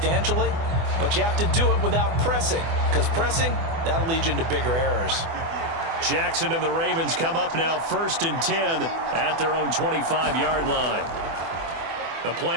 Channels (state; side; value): late; left; 24 ms